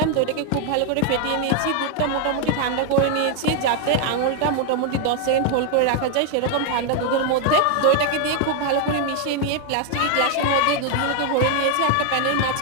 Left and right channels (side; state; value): both; different; correlation 0.00